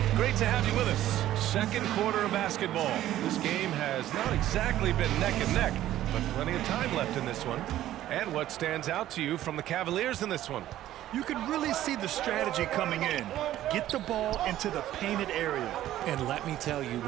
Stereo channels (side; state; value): left; quieter; 13.3 dB